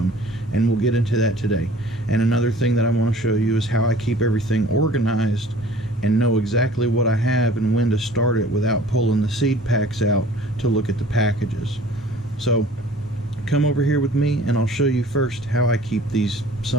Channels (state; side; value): normal; both; correlation 0.49